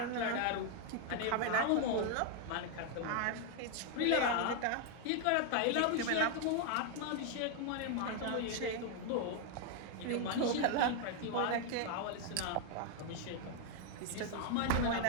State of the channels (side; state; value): both; different; correlation 0.01